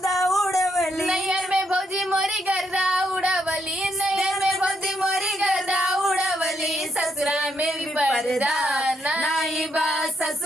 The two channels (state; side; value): normal; both; correlation 0.77